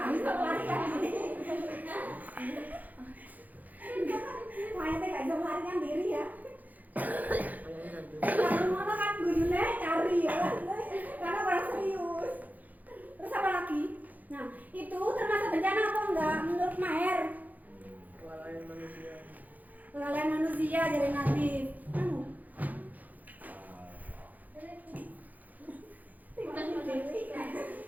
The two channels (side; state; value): left; late; 0.081 ms